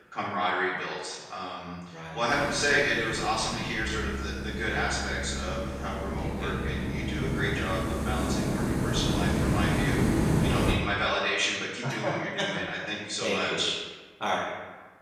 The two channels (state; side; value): identical; both; correlation 1.00